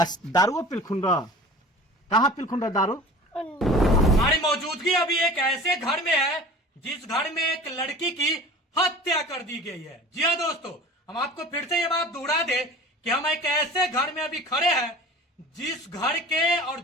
दारुओ पिलखुन रह कहाँ पिलखुन रह दारू हमारी मौजूदगी अभी एक ऐसे घर में है जिस घर में एक लड़की की हत्या कर दी गई है। जी हाँ दोस्तों, हम आपको फिर से ये बात दोहरा दे कि हम एक ऐसे घर में अभी खड़े हैं जिस घर के और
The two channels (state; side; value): normal; both; correlation 0.40